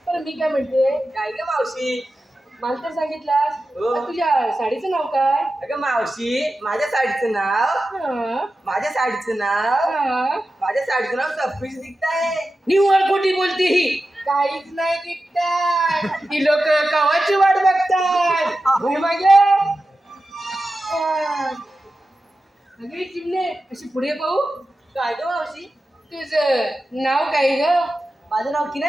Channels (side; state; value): both; normal; correlation 0.93